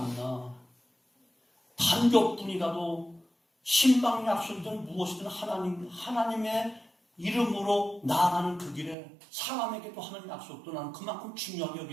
나. 단 몇 분이라도 신방 약속이든 무엇이든 하나님의 이름으로 나아가는 그 길에 사람에게도 하는 약속도 나는 그만큼 중요하게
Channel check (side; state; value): left; drops out; at 9.0 s